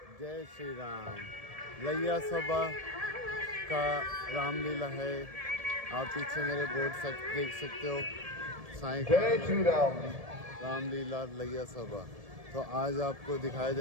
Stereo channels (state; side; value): late; left; 1.7 ms